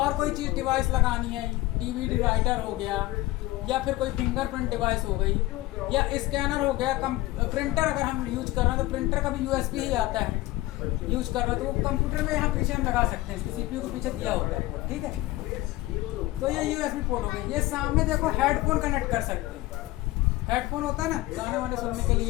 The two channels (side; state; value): right; quieter; 18.1 dB